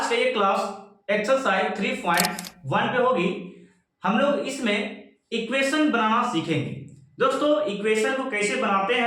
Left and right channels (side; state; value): both; identical; correlation 1.00